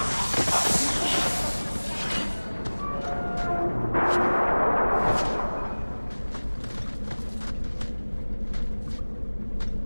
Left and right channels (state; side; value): inverted; both; correlation -1.00